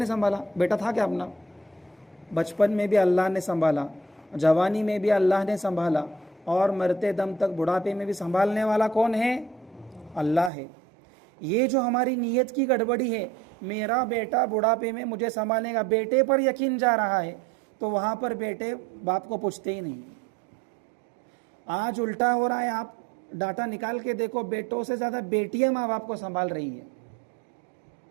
سنبھالا۔ بیٹا تھا کیا اپنا؟ بچپن میں بھی اللہ نے سنبھالا، جوانی میں بھی اللہ نے سنبھالا، اور مرتے دم تک بڑھاپے میں بھی سنبھالنے والا کون ہے؟ اللہ ہے۔ یہ جو ہماری نیت کی گڑبڑی ہے، میرا بیٹا بڑھاپے میں مجھے سنبھالے گا، بیٹے پر یقین جا رہا ہے تو وہاں پر بیٹے باپ کو پوچھتے ہی نہیں۔ آج الٹا ہو رہا ہے، آپ ڈاٹا نکال کے دیکھو، بیٹوں سے زیادہ بیٹیاں ماں باپ کو سنبھال رہی ہیں۔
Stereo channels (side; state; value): left; drops out; at 10.5 s